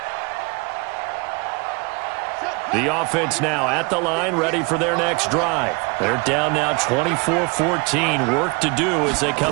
The offense now at the line, ready for their next drive. They're down now 24-14. Work to do as they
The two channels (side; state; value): left; quieter; 28.8 dB